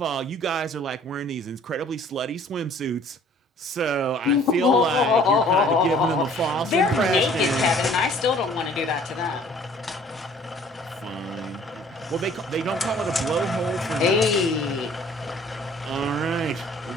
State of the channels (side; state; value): both; normal; correlation 0.54